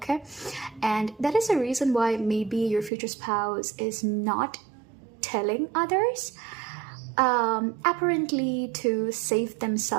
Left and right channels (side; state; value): left; drops out; at 2.9 s